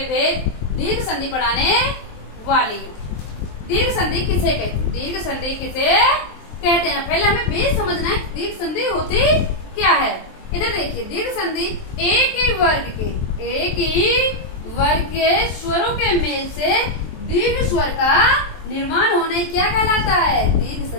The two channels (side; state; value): right; late; 23 ms